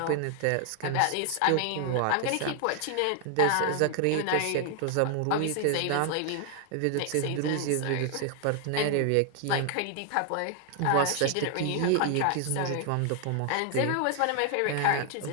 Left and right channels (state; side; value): different; both; correlation 0.00